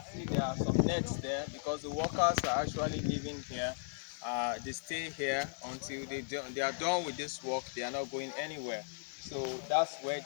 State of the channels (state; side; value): silent; right; digital silence